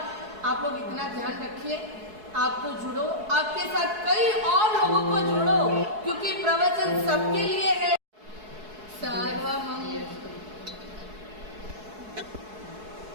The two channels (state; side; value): late; left; 4.7 ms